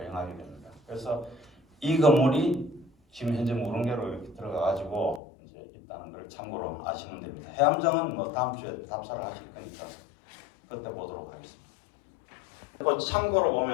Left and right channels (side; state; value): right; drops out; at 5.2 s